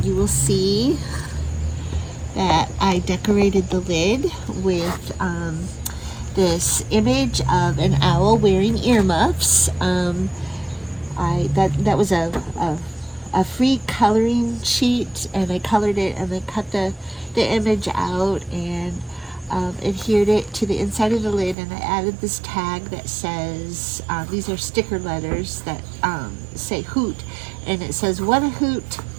you will see that I decorated the lid with this image of an owl wearing earmuffs. That was a free coloring sheet, and I colored it and then cut the image out and adhered it to the inside of the lid, and I added this tag that says, these are sticker letters that say hoot, and it says, "What a hoot,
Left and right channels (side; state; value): left; drops out; at 21.6 s